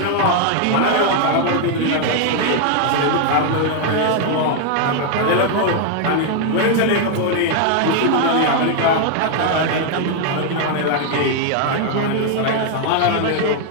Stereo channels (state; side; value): different; both; correlation 0.00